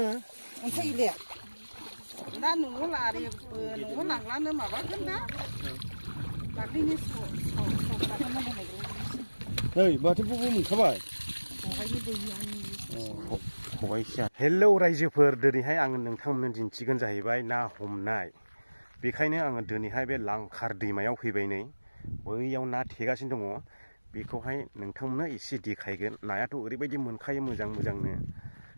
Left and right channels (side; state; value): both; inverted; correlation -1.00